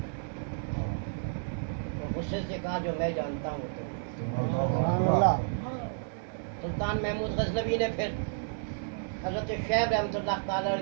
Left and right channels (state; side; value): silent; left; digital silence